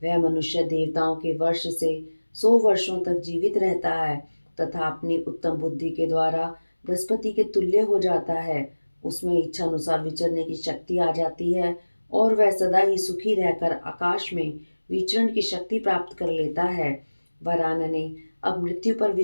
वह मनुष्य देवताओं के वर्ष से 100 वर्षों तक जीवित रहता है तथा अपनी उत्तम बुद्धि के द्वारा बृहस्पति के तुल्य हो जाता है। उसमें इच्छा अनुसार विचरने की शक्ति आ जाती है और वह सदा ही सुखी रहकर आकाश में विचरण की शक्ति प्राप्त कर लेता है। वरानने, अब मृत्यु पर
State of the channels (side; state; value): both; inverted; correlation -1.00